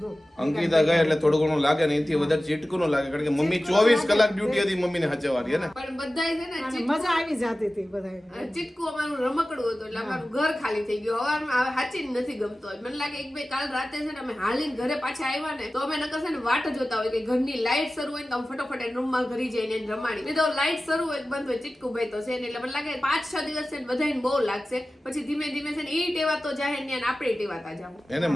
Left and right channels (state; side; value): normal; both; correlation 0.96